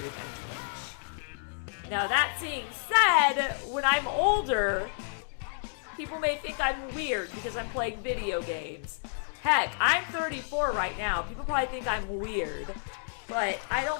and Twitch. Now, that being said, when I'm older, people may think I'm weird because I'm playing video games. Heck, I'm 34 right now. People probably think I'm weird. But I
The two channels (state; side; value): silent; right; digital silence